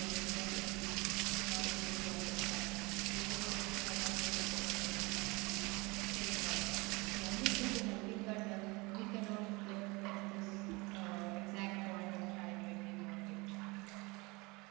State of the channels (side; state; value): left; quieter; 25.3 dB